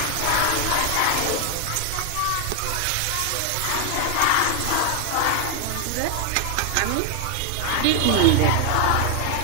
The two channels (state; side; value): different; both; correlation 0.00